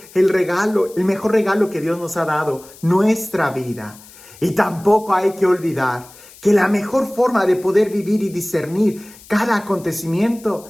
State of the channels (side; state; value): left; noise; hiss, 22 dB below the sound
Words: el mejor regalo que Dios nos ha dado, nuestra vida. Y tampoco hay que olvidar que la mejor forma de poder vivir y discernir cada